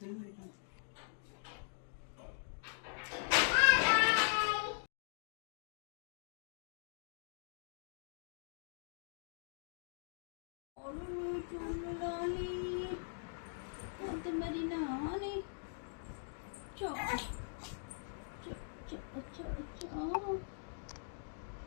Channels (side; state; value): right; silent; digital silence